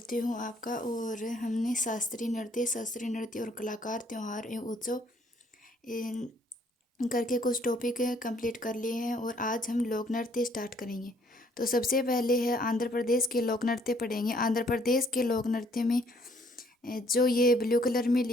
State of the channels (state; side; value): normal; both; correlation 0.63